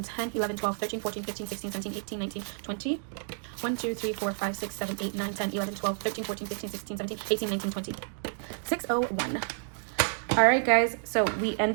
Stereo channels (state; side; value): silent; left; 58 dB below the other